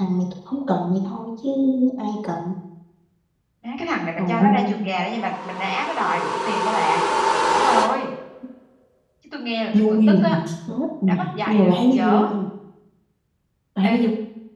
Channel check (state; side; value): identical; both; correlation 1.00